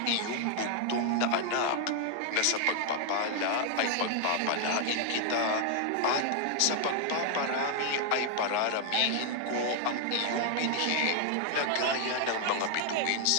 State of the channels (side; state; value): both; different; correlation 0.00